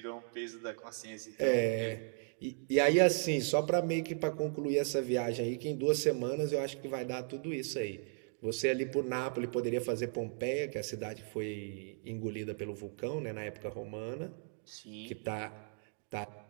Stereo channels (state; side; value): silent; left; 54 dB below the other